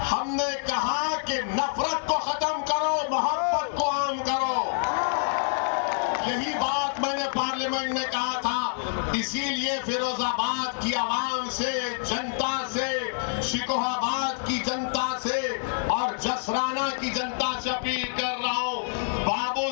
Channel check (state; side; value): silent; right; 60 dB below the other